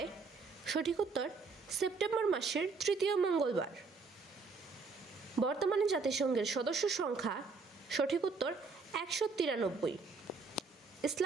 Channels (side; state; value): left; quieter; 4.4 dB